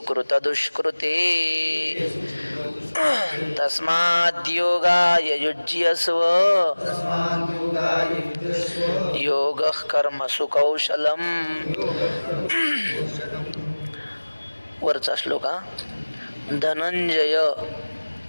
दुष्कृते, तस्माद्योगाय युज्यस्व योगः कर्मसु कौशलम्. वरचा श्लोक हा. धनंजय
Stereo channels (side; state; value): both; inverted; correlation -1.00